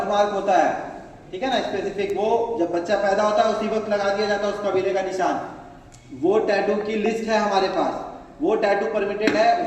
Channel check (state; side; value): identical; both; correlation 1.00